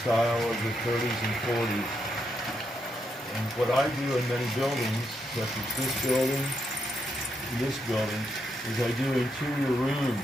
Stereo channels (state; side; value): normal; both; correlation 0.80